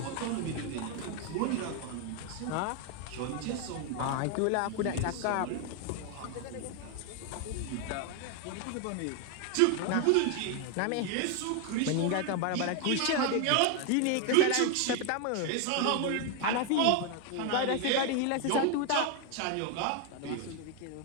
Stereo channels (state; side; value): different; both; correlation 0.01